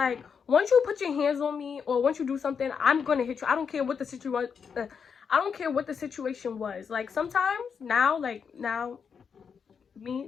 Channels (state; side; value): quieter; right; 6.4 dB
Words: once you put your hands on me or once you do something, I'm going to hit you. I don't care what the situation I don't care what the situation was. Like, sometimes now, me,